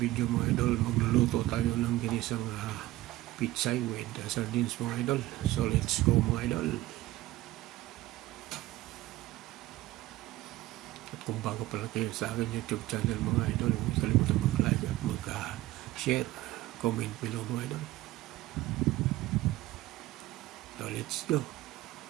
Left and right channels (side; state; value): left; quieter; 17.0 dB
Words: mga idol, magluluto tayo ng ginisang pitsay with sardines mga idol. So let's go mga idol. At kung bago pala kayo sa aking YouTube channel mga idol, huwag kalimutan mag-like at mag-share, comment below mga idol. So let's go.